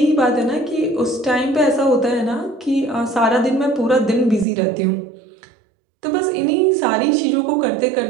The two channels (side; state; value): left; drops out; at 4.5 s